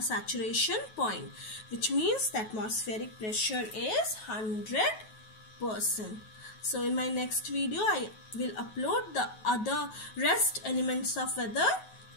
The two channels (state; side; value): late; right; 9.3 ms